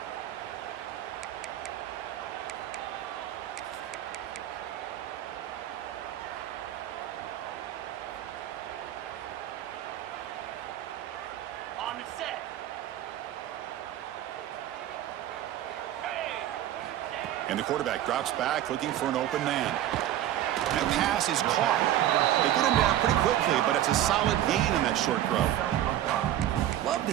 On the set. And the quarterback drops back looking for an open man. That pass is caught. They get him down pretty quickly, but it's a solid gain in that short throw. Love the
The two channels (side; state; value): left; quieter; 12.4 dB